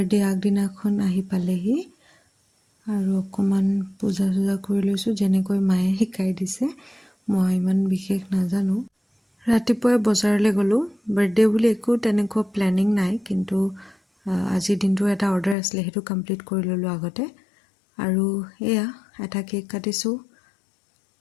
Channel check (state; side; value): drops out; right; at 15.6 s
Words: আগদিনাখন আহি পালেহি আৰু অকণমান পূজা চূজা কৰি লৈছোঁ যেনেকৈ মায়ে শিকাই দিছে। মই ইমান বিশেষ নাজানো। ৰাতিপুৱাই বজাৰলৈ গ'লোঁ। বাৰ্থডে বুলি একো তেনেকুৱা প্লেনিং নাই, কিন্তু আজিৰ দিনটোৰ এটা অৰ্ডাৰ আছিলে, সেইটো কমপ্লিট কৰি ল'লোঁ আগতে। আৰু এয়া এটা কেক কাটিছোঁ।